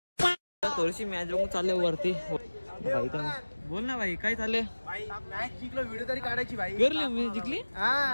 थोडीशी मॅच बघून चालले वरती. बोल ना भाई काय चालले. जिंकलो व्हिडिओ तरी काढायची भाई. करली मी जिंकली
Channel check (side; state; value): both; inverted; correlation -1.00